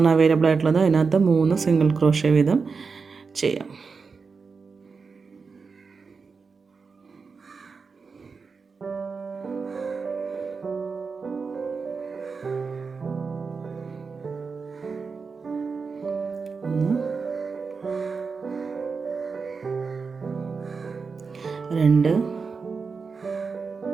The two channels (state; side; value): quieter; left; 5.0 dB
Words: അവൈലബിൾ ആയിട്ടുള്ളത്. അതിനകത്ത് 3 സിംഗിൾ ക്രോഷ്യ വീതം ചെയ്യാം. രണ്ട്,